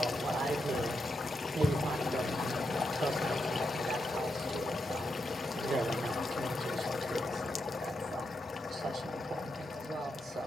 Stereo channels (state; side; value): normal; both; correlation 0.84